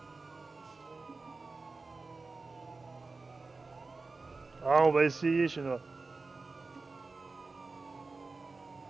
Ah, on va essayer chez nous.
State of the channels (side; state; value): left; quieter; 3.8 dB